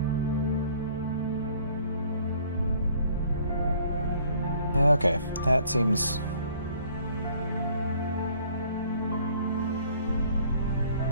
Okay, that seems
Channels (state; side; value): inverted; both; correlation -0.57